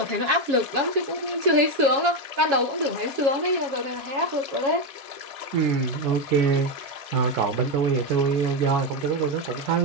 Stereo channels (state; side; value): late; left; 7.3 ms